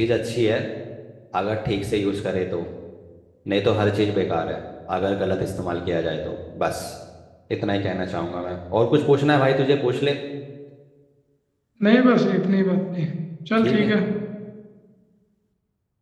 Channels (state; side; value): identical; both; correlation 1.00